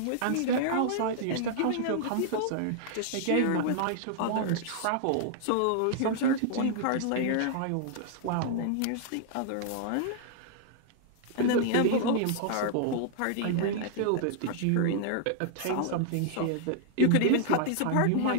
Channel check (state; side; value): different; both; correlation -0.01